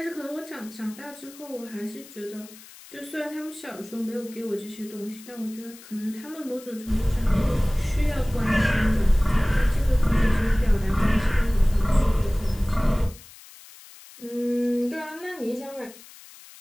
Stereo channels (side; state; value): left; noise; hiss, 20 dB below the sound